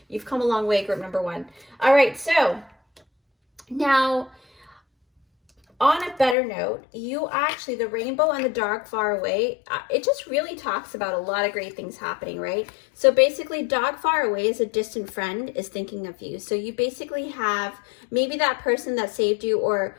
You've come a long way, group number one. All right, so now, on a better note, you actually, the rainbow and the dog far away, it just really talks about a lot of great things happening, right? So basically, dog far away is a distant friend is thinking of you. So you basically have maybe that person that saved you, or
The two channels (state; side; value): drops out; right; at 6.4 s